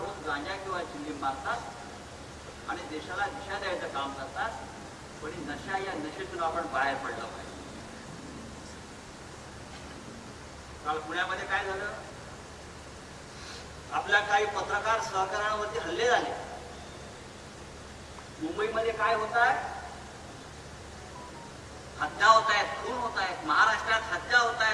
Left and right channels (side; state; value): both; identical; correlation 1.00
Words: गांजा किंवा चिलीम मारतात आणि देशाला दिशा द्यायचं काम करतात, पण नशा या नशेतून आपण बाहेर पडलं पाहिजे. काल पुण्यामध्ये काय झालं, आपल्या काही पत्रकार सहकाऱ्यांवरती हल्ले झाले. मुंबईमध्ये काय होत आहे, हत्या होत आहेत, खून होत आहेत. महाराष्ट्रात हत्या होत